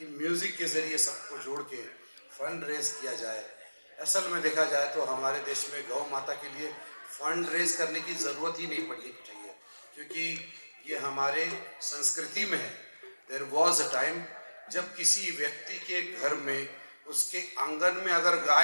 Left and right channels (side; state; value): both; inverted; correlation -1.00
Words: म्यूजिक के जरिए सबको जोड़ के फंड रेज किया जाए। असल में देखा जाए तो हमारे देश में गौ माता के लिए फंड रेज करने की जरूरत ही नहीं पड़नी चाहिए, क्योंकि ये हमारे संस्कृति में है। देयर वॉज अ टाइम जब किसी व्यक्ति के घर में उसके आंगन में अगर